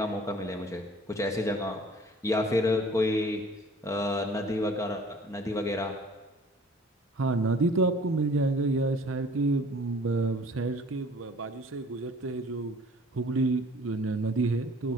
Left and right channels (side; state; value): both; normal; correlation 0.51